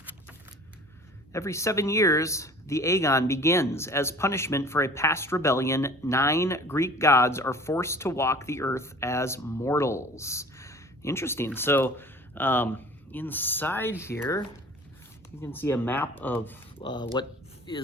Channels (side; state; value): both; normal; correlation 0.46